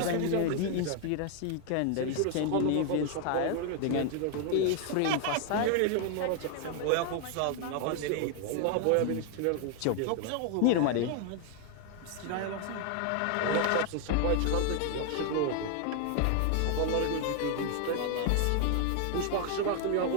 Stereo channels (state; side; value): different; both; correlation 0.00